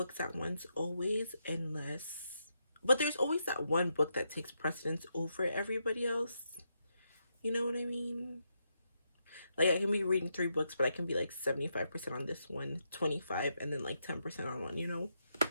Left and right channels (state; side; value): inverted; both; correlation -0.82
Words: at once, always, but there's always that one book that takes precedence over everybody else. You know what I mean? Like, I can be reading 3 books, but I can be like 75% on this one, 25, and then like 10% on one, you know?